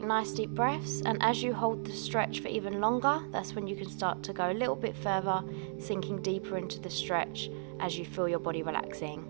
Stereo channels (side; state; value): left; silent; digital silence